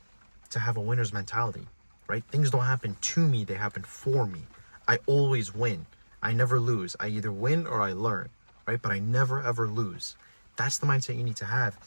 to have a winner's mentality, right? Things don't happen to me, they happen for me. I always win. I never lose. I either win or I learn, right? But I never ever lose. That's the mindset you need to have.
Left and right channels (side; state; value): both; inverted; correlation -1.00